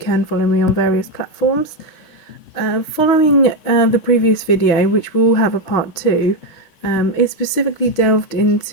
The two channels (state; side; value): late; right; 5.9 ms